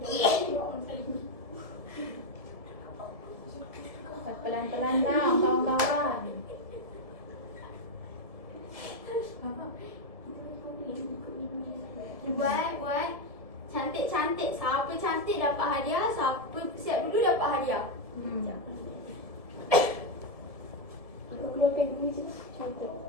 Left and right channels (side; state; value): left; late; 1.7 ms